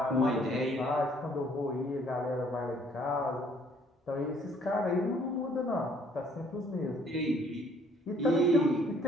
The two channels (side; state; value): both; normal; correlation 0.62